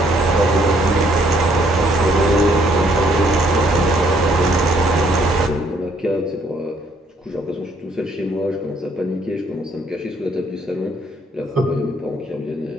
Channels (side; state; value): both; normal; correlation 0.67